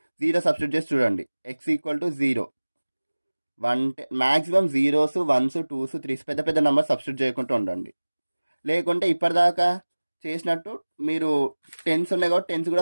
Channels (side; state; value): both; inverted; correlation -1.00